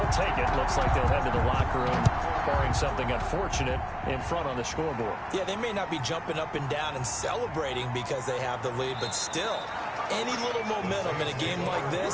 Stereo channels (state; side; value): identical; both; correlation 1.00